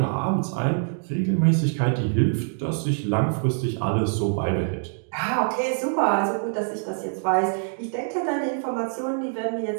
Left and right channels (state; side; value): silent; left; 62 dB below the other